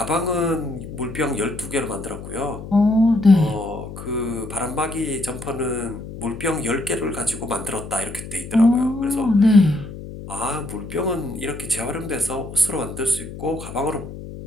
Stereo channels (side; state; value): left; noise; hum, 11 dB below the sound